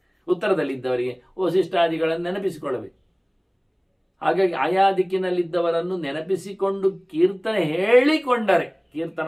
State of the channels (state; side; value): identical; both; correlation 1.00